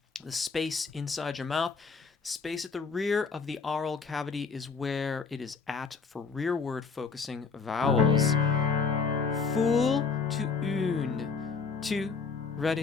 The space inside your mouth. Space at the rear of the aural cavity is where it is at for rearward focusing vowels. Fool to une. Two,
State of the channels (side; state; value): right; quieter; 5.1 dB